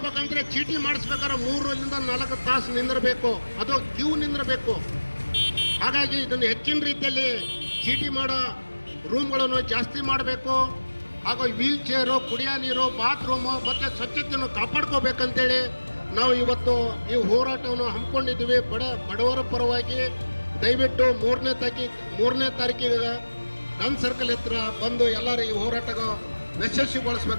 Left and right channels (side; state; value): both; inverted; correlation -1.00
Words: ಚೀಟಿ ಮಾಡಿಸ್ಬೇಕಾದ್ರೆ 3 ರಿಂದ 4 ತಾಸು ನಿಂದಿರಬೇಕು, ಅದು ಕ್ಯೂ ನಿಂದಿರಬೇಕು. ಹಾಗಾಗಿ ಇದನ್ನು ಹೆಚ್ಚಿನ ರೀತಿಯಲ್ಲಿ ಚೀಟಿ ಮಾಡೋ ರೂಮ್ಗಳನ್ನು ಜಾಸ್ತಿ ಮಾಡಬೇಕು. ಹಾಗೂ ವೀಲ್ ಚೇರು, ಕುಡಿಯೋ ನೀರು, ಬಾತ್ರೂಮು ಮತ್ತು ಸ್ವಚ್ಛತೆಯನ್ನು ಕಾಪಾಡ್ಕೋಬೇಕಂತೇಳಿ ನಾವು ಇವತ್ತು ಈ ಹೋರಾಟವನ್ನು ಹಮ್ಮಿಕೊಂಡಿದ್ದೀವಿ. ಬಡವರ ಪರವಾಗಿ ದಯವಿಟ್ಟು 3ನೇ ತಾರೀಕಿಗೆ ಗನ್ ಸರ್ಕಲ್ ಹತ್ರ ಬಂದು ಎಲ್ಲರೂ ಈ ಹೋರಾಟ